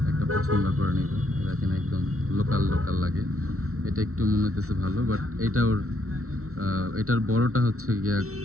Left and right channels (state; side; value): late; left; 0.63 ms